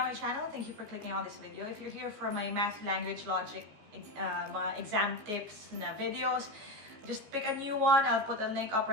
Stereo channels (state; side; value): late; left; 14 ms